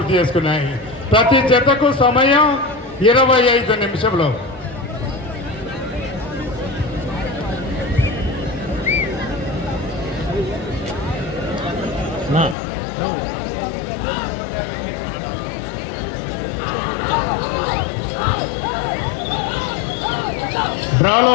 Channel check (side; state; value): right; drops out; at 12.6 s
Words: చేసుకున్నాయి. ప్రతి జతకు సమయం 25 నిమిషంలో.